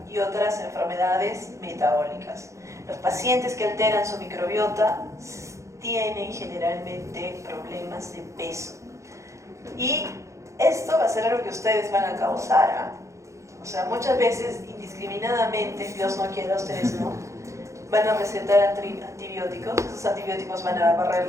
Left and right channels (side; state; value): left; late; 0.15 ms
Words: y otras enfermedades metabólicas. Los pacientes que alteran su microbiota tienen generalmente problemas de peso. Y esto va a ser algo que ustedes van a causar, ¿ah? O sea, muchas veces, indiscriminadamente, Dios no quiera, ustedes no, van a recetar antibióticos, esos antibióticos van a barrer